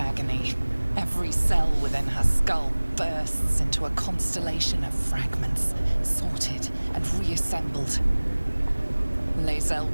Every cell within her skull bursts into a constellation of fragments, sorted and reassembled. Lazel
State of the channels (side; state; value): both; inverted; correlation -1.00